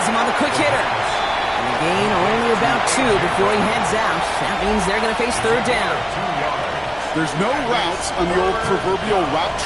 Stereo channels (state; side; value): identical; both; correlation 1.00